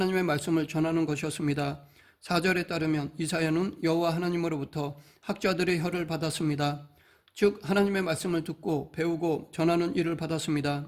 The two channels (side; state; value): both; identical; correlation 1.00